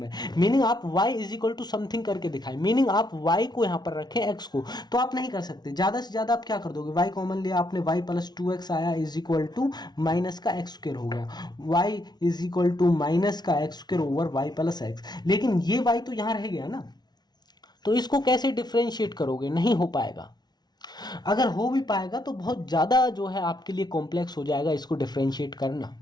मीनिंग आप y is equal to something करके दिखाए, मीनिंग आप y को यहां पर रखें x को, तो आप नहीं कर सकते। ज्यादा से ज्यादा आप क्या कर दोगे, y कॉमन लिया आपने, y प्लस 2x आया इज इक्वल टू माइनस का एक्स स्क्वायर हो गया, y is equal to minus का X square over y plus X. लेकिन ये y तो यहां रह गया ना, तो इसको कैसे डिफरेंशिएट करोगे, नहीं हो पाएगा। अगर हो भी पाएगा तो बहुत ज़्यादा जो है आपके लिए कॉम्प्लेक्स हो जाएगा इसको डिफरेंशिएट करना।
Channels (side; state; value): right; late; 0.20 ms